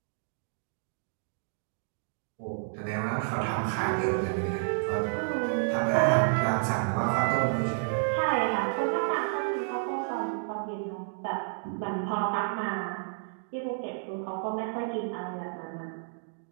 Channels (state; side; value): silent; left; digital silence